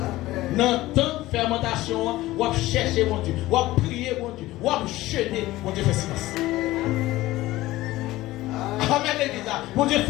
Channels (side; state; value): right; quieter; 17.3 dB